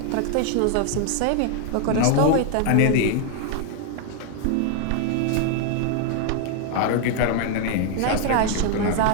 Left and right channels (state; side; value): different; both; correlation 0.00